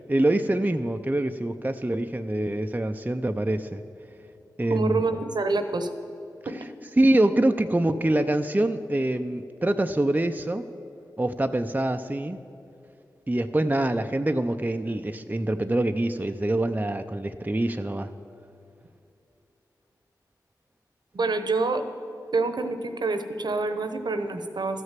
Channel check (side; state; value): both; normal; correlation 0.91